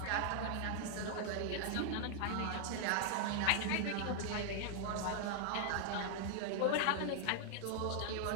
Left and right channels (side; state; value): both; different; correlation 0.00